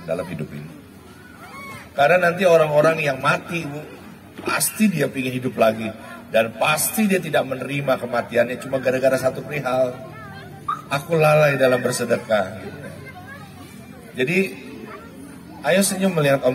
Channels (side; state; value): both; identical; correlation 1.00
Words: dalam hidup ini. Karena nanti orang-orang yang mati ibu, pasti dia ingin hidup lagi. Dan pasti dia tidak menerima kematiannya cuma gara-gara satu perihal. Aku lalai dalam bersedekah. Jadi ayo senyum melihat